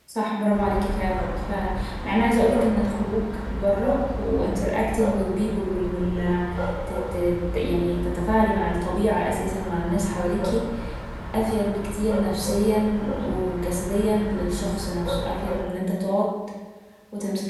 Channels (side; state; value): both; identical; correlation 1.00